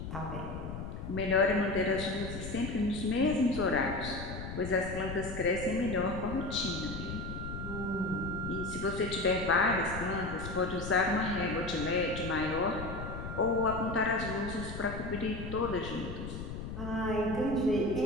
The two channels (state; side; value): noise; left; rumble, 7 dB below the sound